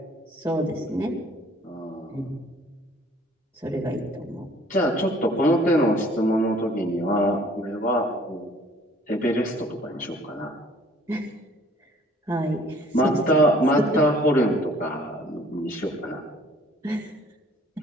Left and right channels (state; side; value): normal; both; correlation 0.56